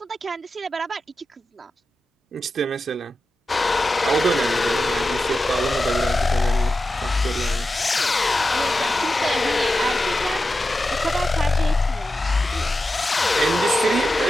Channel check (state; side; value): normal; both; correlation 0.91